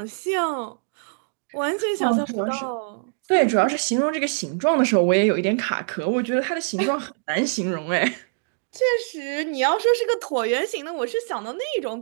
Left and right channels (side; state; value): left; silent; digital silence